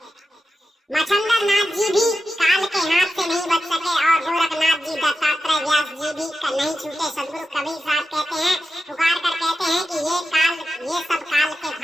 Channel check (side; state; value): both; normal; correlation 0.90